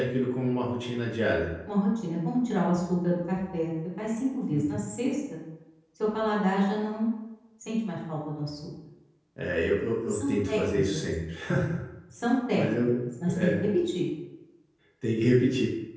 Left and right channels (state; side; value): identical; both; correlation 1.00